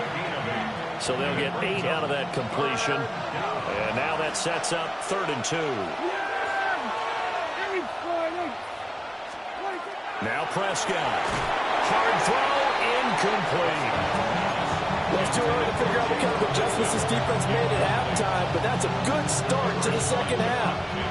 So they'll get 8 out of that completion. And now that sets up 3rd and 2. Now Prescott. Hard throw, incomplete. Well, it's too early to figure out what kind of adjustments this defense made at halftime, but that's a good start to the second half.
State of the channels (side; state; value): both; identical; correlation 1.00